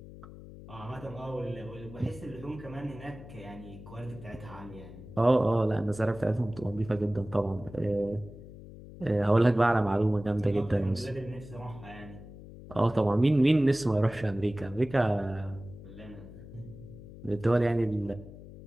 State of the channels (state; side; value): noise; left; hum, 16 dB below the sound